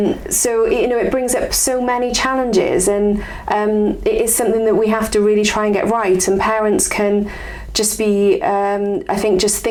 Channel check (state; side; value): identical; both; correlation 1.00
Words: So it brings up so many challenges, and it is something that we have to really try and get right, and parents can just be I think just